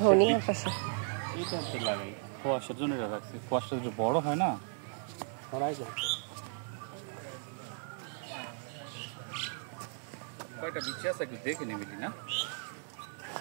ধনিয়া পাশে এইটা হচ্ছে লাগাই, খোয়াশের জন্য এটা রাখছি। খোয়াশটা যদি বড় হয় না, ছড়াই যায়। কয়টা বিচি আছে একটু দেখে নিবি না?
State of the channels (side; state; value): left; silent; 54 dB below the other